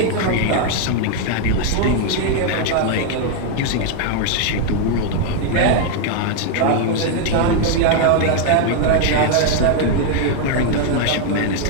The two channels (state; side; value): different; both; correlation 0.00